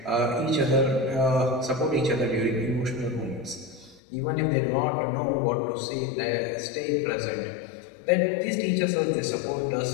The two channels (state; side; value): drops out; right; at 4.0 s